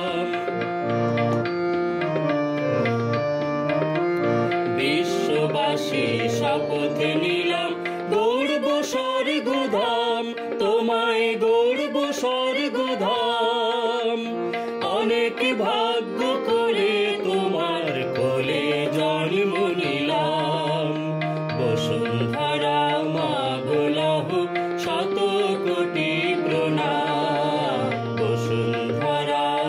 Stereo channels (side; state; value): both; identical; correlation 1.00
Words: বিশ্ববাসী শপথ নিলাম, গৌরব স্বর্গধাম তোমায় গৌরব স্বর্গধাম। অনেক ভাগ্য করে তোমার কোলে জন্ম নিলাম। বসুন্ধরা মা গো লহ শত কোটি প্রণাম, বসুন্ধরা